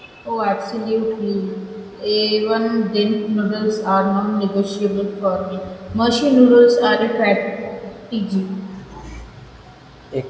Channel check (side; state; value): both; identical; correlation 1.00